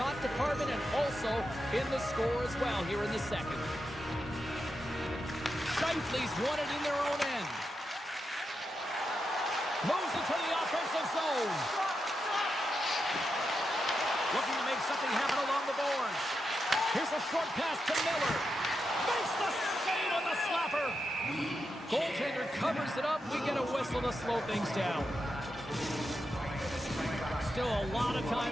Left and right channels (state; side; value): normal; both; correlation 0.87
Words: department and also in the score as well here in the second. Shifley's won it in their own end. Moves into the offensive zone. Looking to make something happen along the boards. Here's a short pass to Miller. Makes the save on the slapper. Goaltender covers it up. We get a whistle to slow things down. Still a lot of